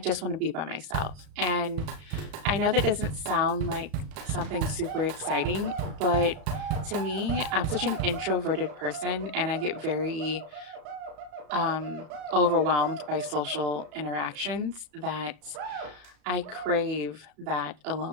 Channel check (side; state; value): left; late; 34 ms